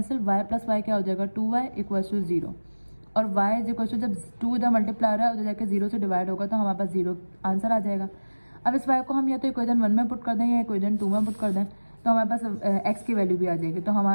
y plus y क्या हो जाएगा 2y इक्वल टू 0 और y इज इक्वल टू, जब 2 इधर मल्टीप्लाई हो रहा है उधर जाके 0 से डिवाइड होगा तो हमारे पास 0 आंसर आ जाएगा। अब इस y को हम या तो इक्वेशन 1 में पुट कर दें या इक्वेशन 2 में पुट कर दें तो हमारे पास x की वैल्यू भी आ जाएगी। तो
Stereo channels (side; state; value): both; inverted; correlation -1.00